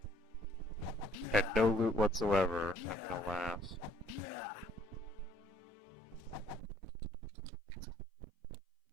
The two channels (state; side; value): drops out; left; at 6.6 s